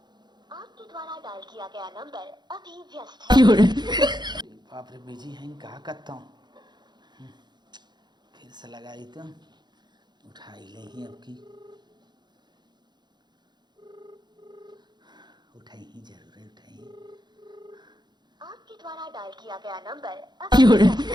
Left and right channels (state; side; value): late; left; 0.21 ms